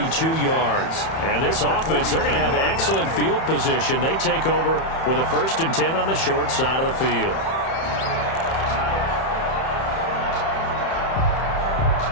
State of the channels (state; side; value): late; right; 31 ms